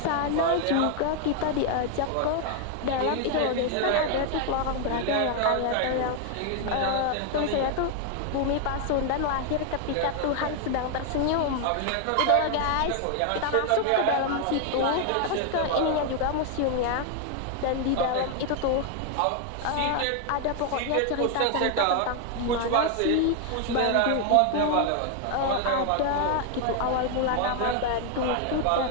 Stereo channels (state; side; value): different; both; correlation 0.00